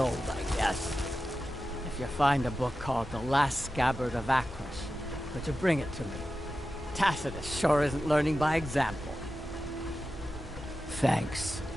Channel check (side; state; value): both; normal; correlation 0.92